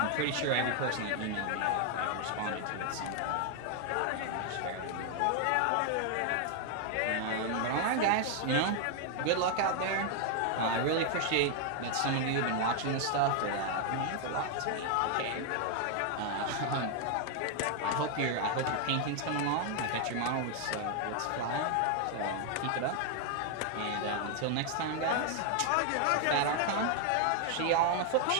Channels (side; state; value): both; different; correlation 0.00